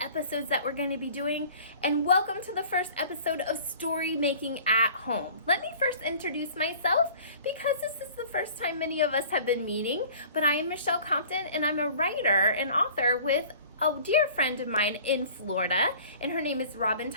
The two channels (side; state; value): both; inverted; correlation -0.47